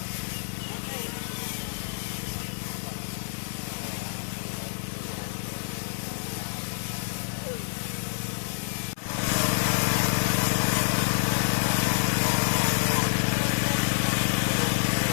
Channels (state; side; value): silent; right; 60 dB below the other